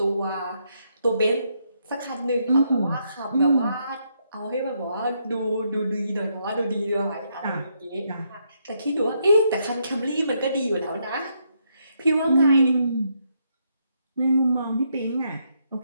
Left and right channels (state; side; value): inverted; both; correlation -0.77